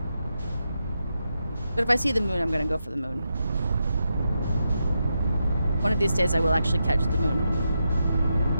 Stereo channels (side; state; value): both; inverted; correlation -0.86